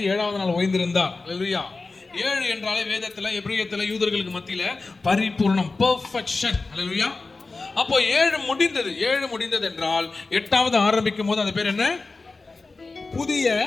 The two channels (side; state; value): right; quieter; 3.7 dB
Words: 7வது நாள் ஓய்ந்திருந்தார். ஹல்லேலூயா. 7 என்றாலே வேதத்துல, எபிரேயத்துல, யூதர்களுக்கு மத்தியில பரிபூர்ணம், பெர்ஃபெக்ஷன். ஹல்லேலூயா. அப்போ 7 முடிந்தது. 7 முடிந்தது என்றால் 8வது ஆரம்பிக்கும் போது அது பேர் என்ன? புதிய